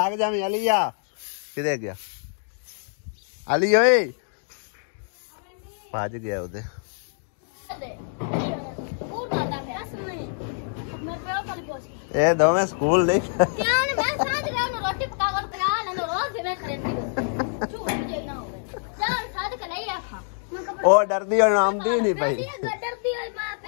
जावी। अलिया किधे गया? अली ओए भज गया उधे। ए दोवें स्कूल नहीं ओ डरदी और आमदी नहीं पई।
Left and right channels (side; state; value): right; silent; digital silence